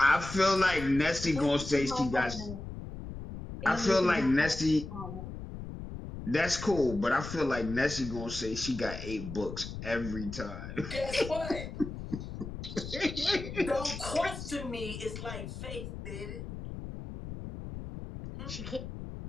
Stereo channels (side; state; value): left; noise; rumble, 9 dB below the sound